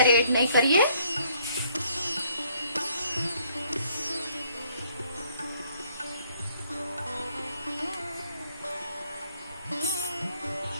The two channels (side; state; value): both; inverted; correlation -0.65